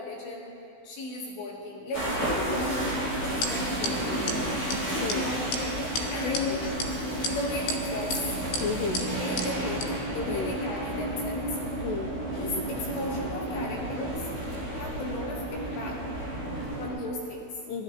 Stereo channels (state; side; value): late; right; 16 ms